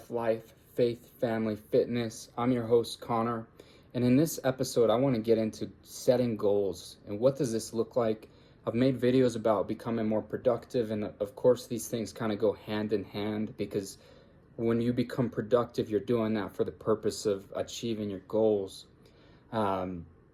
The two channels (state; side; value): identical; both; correlation 1.00